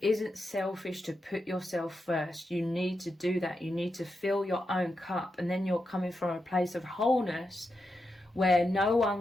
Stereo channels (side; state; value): both; normal; correlation 0.87